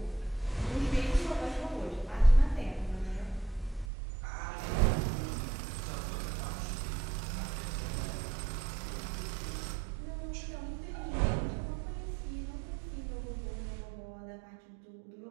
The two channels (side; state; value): left; drops out; at 3.9 s